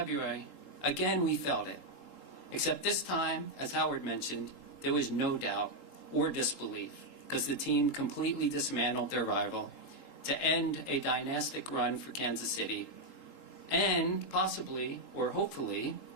again we felt it. Except this time, as Howard mentioned, there was no doubt or disbelief, because the team completely dismantled their rival to end a dynastic run for Kansas City, and possibly, or hopefully,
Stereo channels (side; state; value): right; late; 3.8 ms